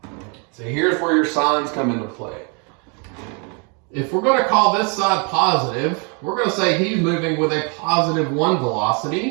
So here's where your signs come into play. If we're going to call this side positive, we're going to say he's moving with a positive 1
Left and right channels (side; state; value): left; quieter; 35.7 dB